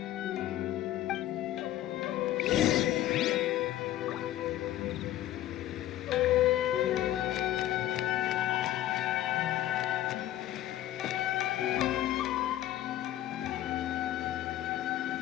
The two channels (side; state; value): right; quieter; 13.4 dB